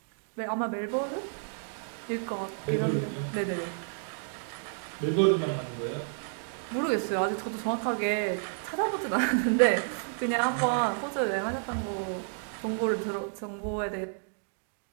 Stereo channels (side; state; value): left; silent; digital silence